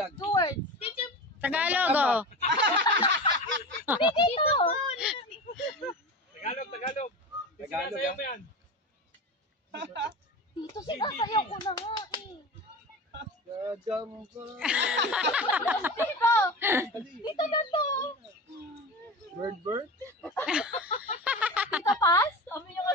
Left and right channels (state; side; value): normal; both; correlation 0.28